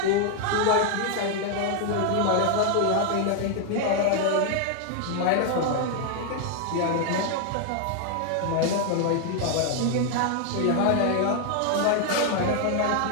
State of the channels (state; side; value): different; both; correlation 0.00